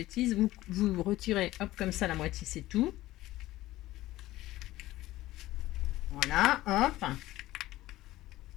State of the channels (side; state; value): right; quieter; 16.4 dB